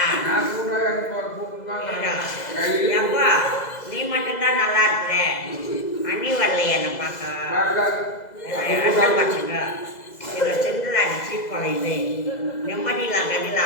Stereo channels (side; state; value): right; late; 2.0 ms